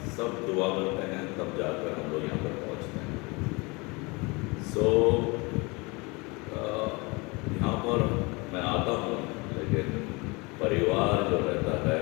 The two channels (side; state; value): right; quieter; 26.7 dB